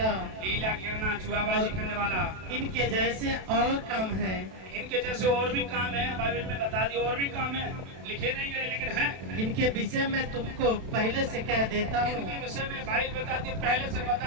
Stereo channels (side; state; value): left; late; 32 ms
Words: जुआबाजी करने वाला। इनके जैसे और काम है। इनके जैसे और भी काम है, बाइबल में बता दी, और भी काम है, लिखे नहीं गए लेकिन हैं। इनके विषय में तुमको पहले से कह देता हूँ, इनके विषय में बाइबल बताती, पहले से